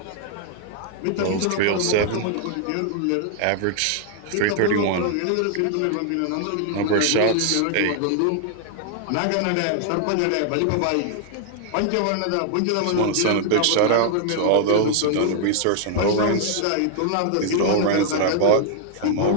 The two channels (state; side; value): different; both; correlation 0.00